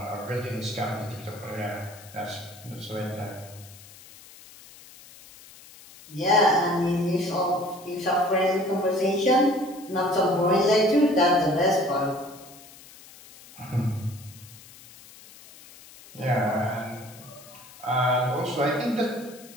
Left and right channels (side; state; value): left; noise; hiss, 21 dB below the sound